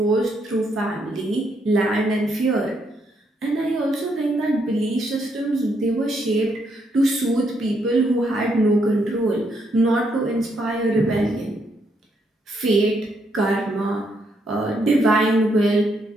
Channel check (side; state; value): both; normal; correlation 0.75